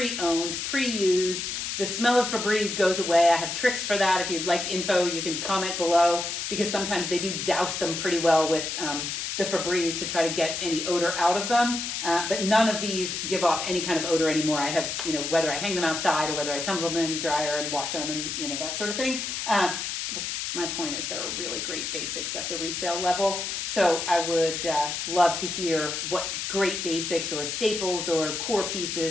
pre-used. The smell of Febreze goes away. I have tricks for that. If you'd like info, you can comment below, because sometimes they do douse them pretty well with the Febreze to try to get any odor out of them. But none of these give off any kind of odor anymore. I have, whether I hang them outside or whether I tumble them in the dryer and wash them and, that sort of thing. But my point is there are really great basics at the resale level. So I would love to hear what great basics or staples or core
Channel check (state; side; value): noise; left; hiss, 3 dB below the sound